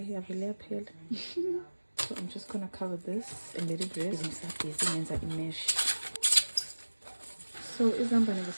yavele yaphela. So I'm just gonna cover this and let it rest. Ngisabhizi ngenza imesh. So izambane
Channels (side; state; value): both; inverted; correlation -1.00